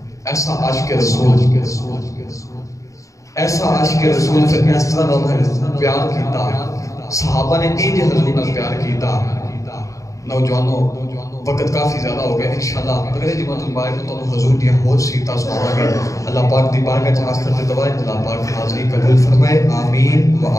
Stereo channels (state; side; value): late; right; 0.16 ms